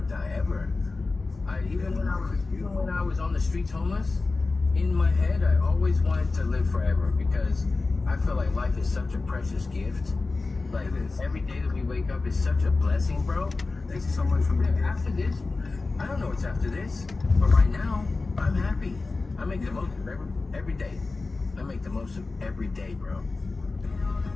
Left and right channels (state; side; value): quieter; right; 3.7 dB